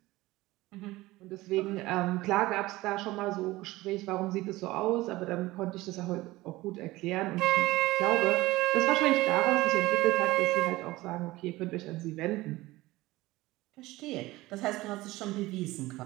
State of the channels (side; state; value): left; quieter; 18.9 dB